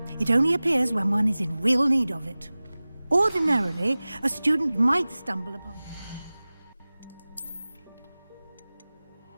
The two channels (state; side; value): inverted; both; correlation -0.99